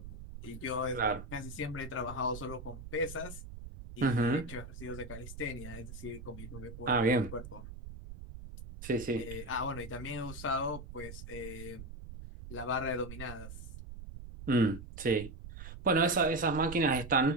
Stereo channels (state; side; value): noise; right; rumble, 12 dB below the sound